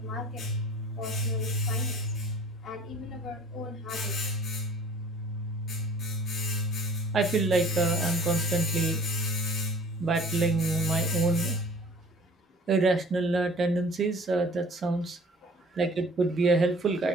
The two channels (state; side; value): normal; both; correlation 0.49